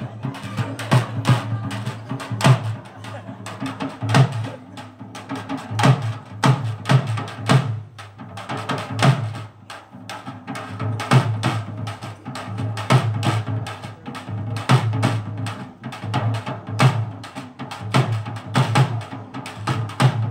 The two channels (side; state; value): both; identical; correlation 1.00